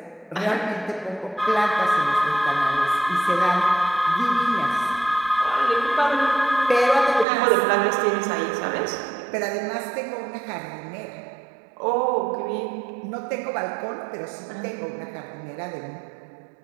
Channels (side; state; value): left; drops out; at 7.2 s